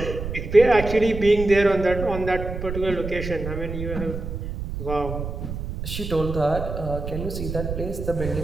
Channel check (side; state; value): right; noise; rumble, 6 dB below the sound